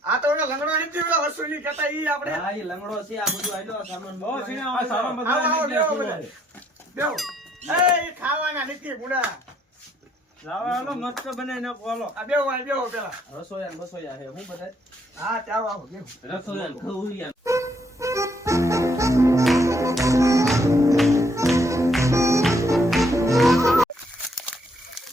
આ તો ઓલા લંગડો નથી ઓલા વસૂલી કહેતા ઈ આપણે હા એ લંગડો છે આ બધું આયલો સામાન બહુ બધું શેણા આ સારા બધા આવો, બધા આવો, બેહો બધા. બેહો એ ખાવાના નથી બુડા લાવો હાલો મસ્ત બનાવી નાખો હાલો. આ બેહો પેલા. રસોયા ને બસોયા હે હું બધા હા ચાલો આવો બેહો. રસોયા ને ખવડિયા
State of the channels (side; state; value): both; normal; correlation 0.69